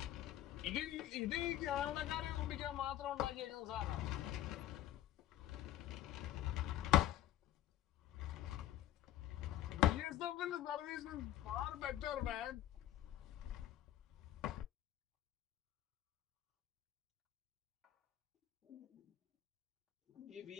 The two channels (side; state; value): right; quieter; 13.1 dB